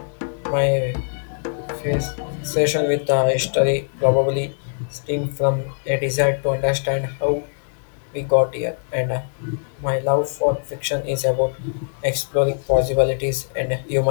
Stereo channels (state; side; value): silent; right; digital silence